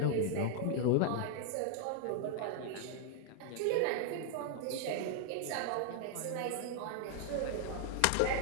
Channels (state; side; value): different; both; correlation 0.00